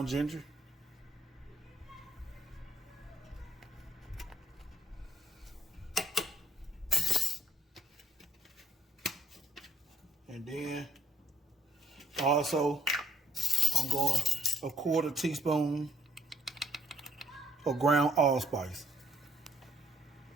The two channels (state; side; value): normal; both; correlation 0.66